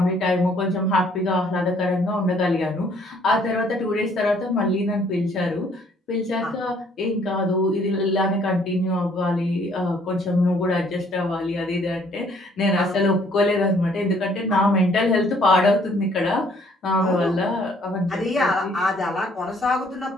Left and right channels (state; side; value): normal; both; correlation 0.62